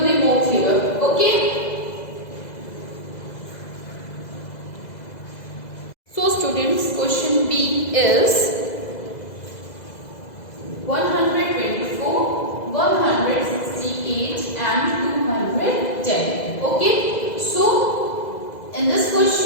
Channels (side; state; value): right; late; 2.0 ms